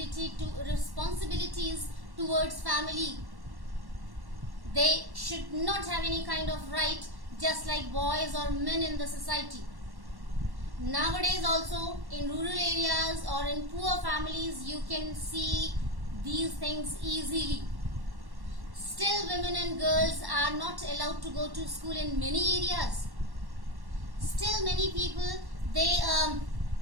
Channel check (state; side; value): late; left; 1.1 ms